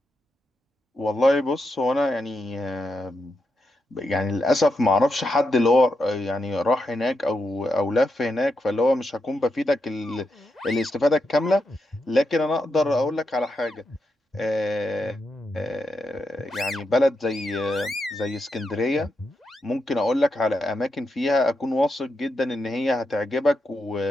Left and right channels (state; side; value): normal; both; correlation 0.84